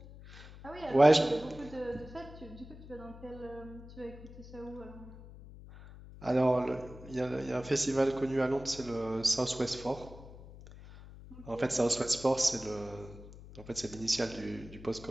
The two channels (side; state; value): left; noise; hum, 16 dB below the sound